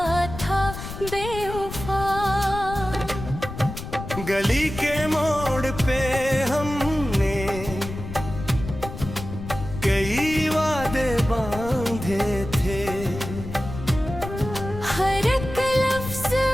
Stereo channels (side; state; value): left; noise; rumble, 9 dB below the sound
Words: था बेवफा। गली के मोड़ पे हमने कई वादे बांधे थे। हर एक लफ्ज